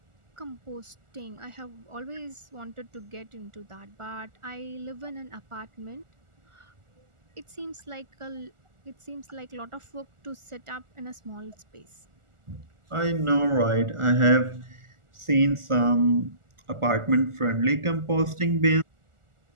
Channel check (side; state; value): left; late; 1.4 ms